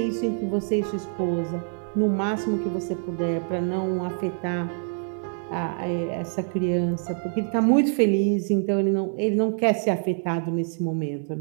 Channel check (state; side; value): silent; left; 57 dB below the other